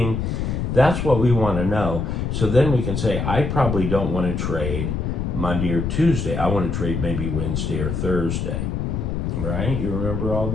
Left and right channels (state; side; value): noise; left; rumble, 2 dB below the sound